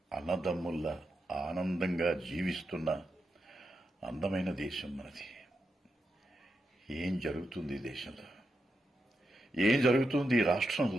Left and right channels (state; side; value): normal; both; correlation 0.86